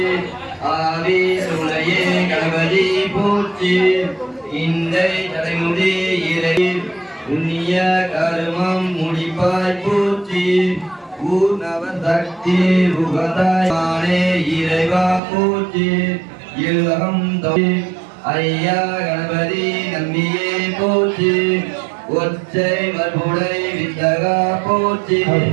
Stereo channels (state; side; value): drops out; left; at 15.2 s